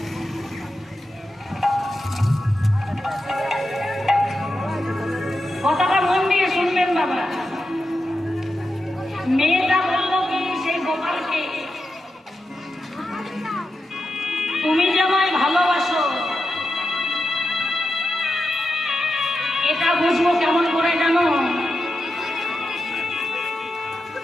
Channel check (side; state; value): both; normal; correlation 0.88